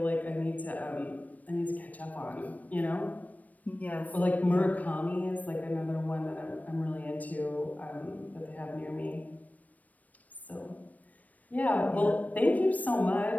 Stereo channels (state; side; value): late; right; 0.074 ms